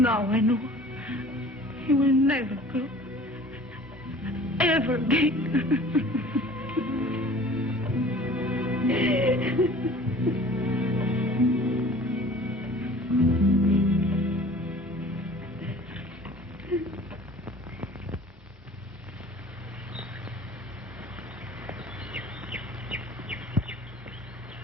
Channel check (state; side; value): normal; both; correlation 0.47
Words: I know he will never go. Ever again.